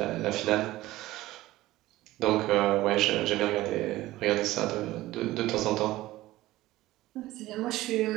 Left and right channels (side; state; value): left; quieter; 16.9 dB